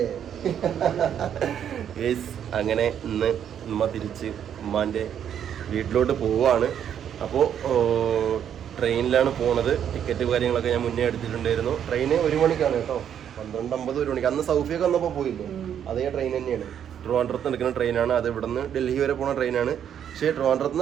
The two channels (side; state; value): left; quieter; 9.1 dB